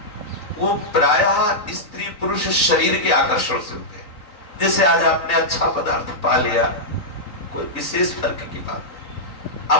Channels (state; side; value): late; right; 3.8 ms